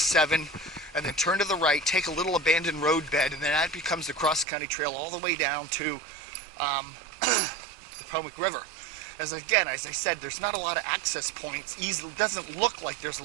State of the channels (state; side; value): drops out; left; at 4.5 s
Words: 7, and then turn to the right, take a little abandoned road bed, and then that becomes the Cross County Trail all the way down to the Potomac River. As I said, there's not a lot of access points. It doesn't look like there's a